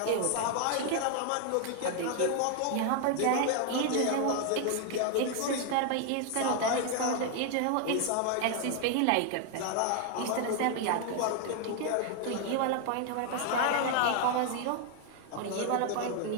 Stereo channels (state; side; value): different; both; correlation 0.00